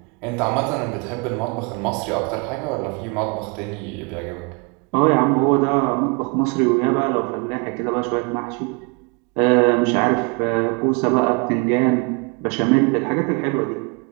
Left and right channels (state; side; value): quieter; left; 31.9 dB